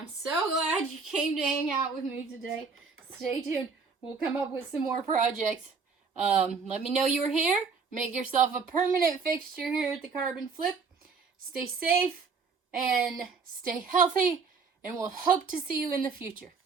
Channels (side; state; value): left; quieter; 5.1 dB